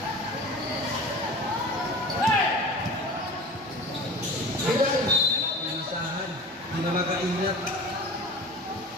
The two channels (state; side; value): noise; right; rumble, 27 dB below the sound